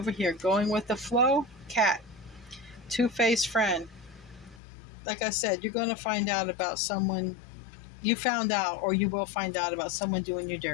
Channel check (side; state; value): right; drops out; at 4.6 s